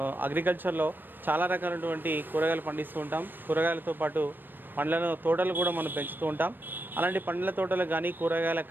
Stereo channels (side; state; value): left; late; 0.093 ms